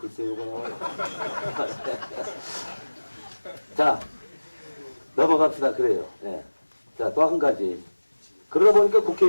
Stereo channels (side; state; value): both; inverted; correlation -1.00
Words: 나와요. 자, 넘어갑시다. 그래요. 네. 자, 또 한 가지. 그러다 보니까